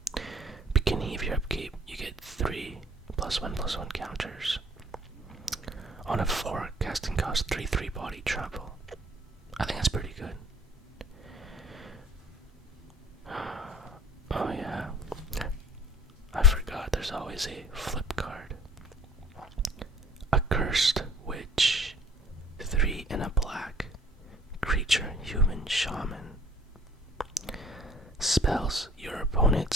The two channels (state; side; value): normal; both; correlation 0.53